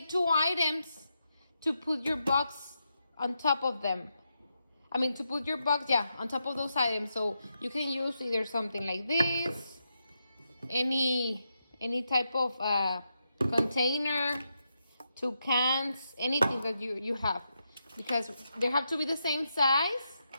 2 items to put your box on top of them. To put your box, on top of those items. So you can use either something like this, any type of container, 2 cans, anything that you have, because they have to be the same size,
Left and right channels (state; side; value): inverted; both; correlation -0.84